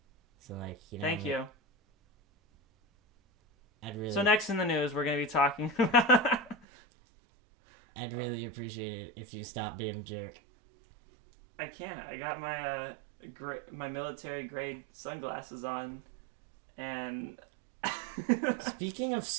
So Thank you. I'd really. So next in the news, we're gonna be talking. I'd really appreciate it if you stopped being a jerk. I can't. I got my my military grade sunglasses on, and. Speaking of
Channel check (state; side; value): drops out; left; at 6.7 s